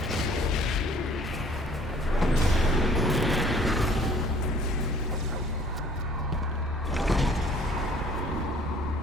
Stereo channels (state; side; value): normal; both; correlation 0.55